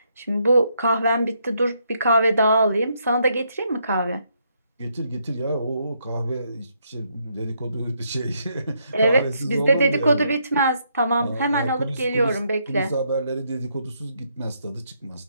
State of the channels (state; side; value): inverted; both; correlation -0.75